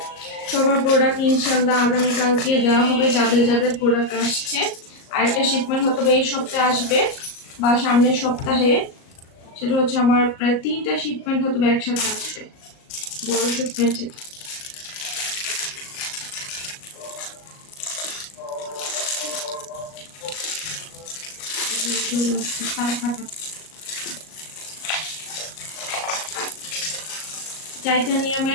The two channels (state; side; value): late; right; 38 ms